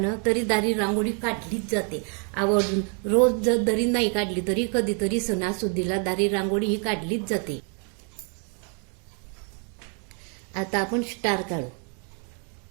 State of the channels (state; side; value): quieter; left; 39.3 dB